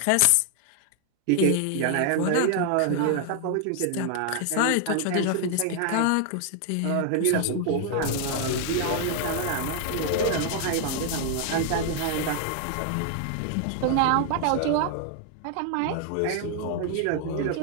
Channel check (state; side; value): different; both; correlation 0.00